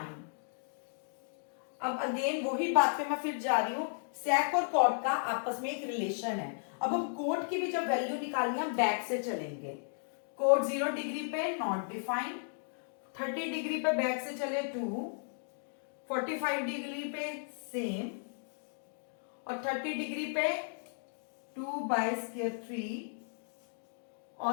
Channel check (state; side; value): silent; right; digital silence